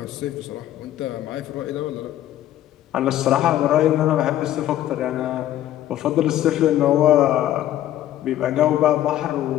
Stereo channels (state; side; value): quieter; right; 12.8 dB